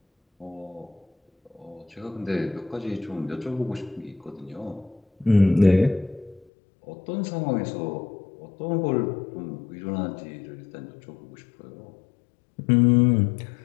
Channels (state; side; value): drops out; right; at 6.5 s